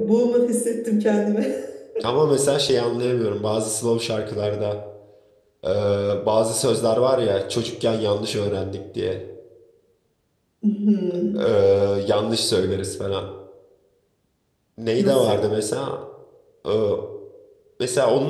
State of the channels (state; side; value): identical; both; correlation 1.00